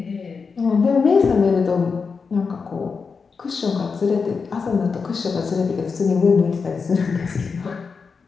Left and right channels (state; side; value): quieter; right; 5.2 dB